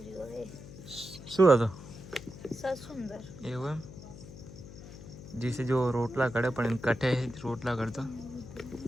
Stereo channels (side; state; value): left; noise; hum, 15 dB below the sound